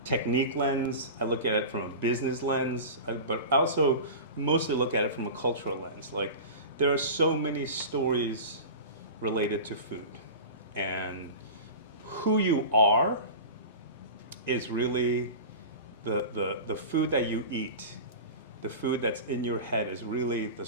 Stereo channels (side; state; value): both; inverted; correlation -0.31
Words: technique lens. I look at it from a business lens. But I also mostly look at it from a cultural lens. Like, there are so many stories related to food. And who you are is really the food that you eat. The food that's in your head is really the